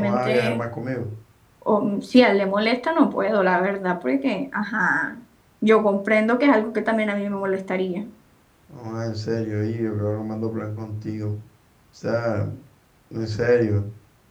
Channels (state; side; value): identical; both; correlation 1.00